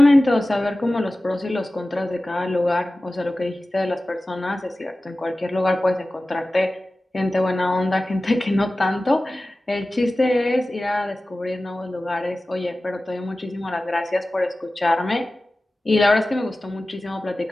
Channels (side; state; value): both; normal; correlation 0.96